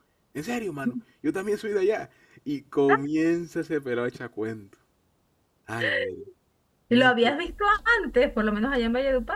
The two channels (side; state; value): both; identical; correlation 1.00